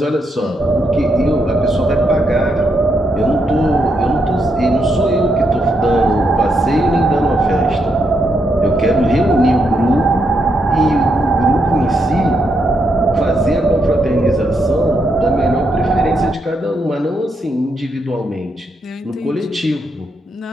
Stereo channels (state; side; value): normal; both; correlation 0.79